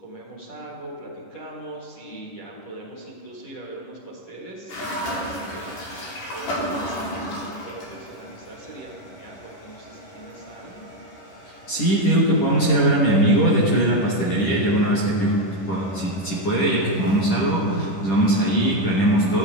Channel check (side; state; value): right; late; 10 ms